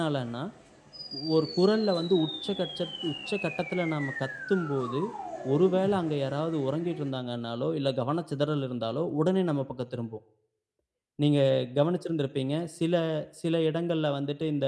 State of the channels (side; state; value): both; identical; correlation 1.00